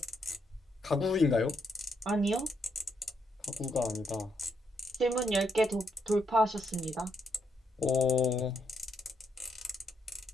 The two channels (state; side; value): normal; both; correlation 0.78